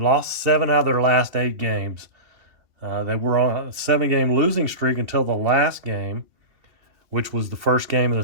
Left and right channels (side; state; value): left; late; 2.7 ms